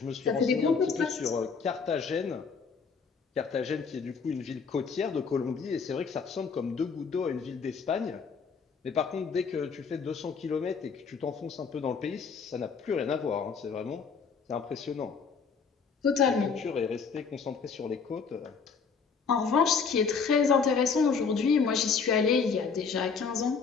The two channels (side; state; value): right; quieter; 5.6 dB